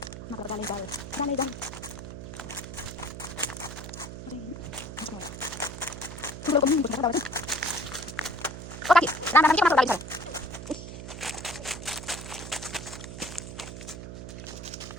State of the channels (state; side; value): noise; right; hum, 10 dB below the sound